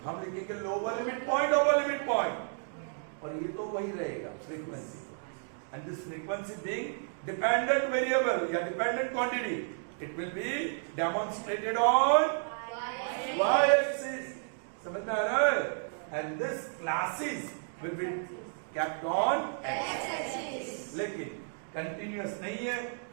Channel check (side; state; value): left; silent; digital silence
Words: हम लिखेंगे lower limit point, upper limit point. और ये तो वही रहेगा frequency. And this frequency being dependent variable या dependent quantity, it will be demonstrated on y axis. समझ में आ रहा है? And this classes will be kept on x axis. लेकिन कंटिन्यूअस नहीं है,